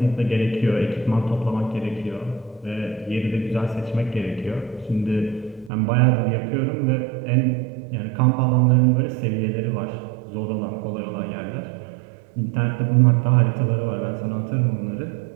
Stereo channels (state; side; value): drops out; left; at 5.7 s